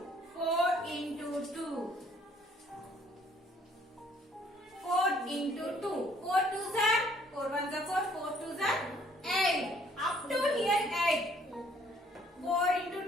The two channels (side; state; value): both; normal; correlation 0.62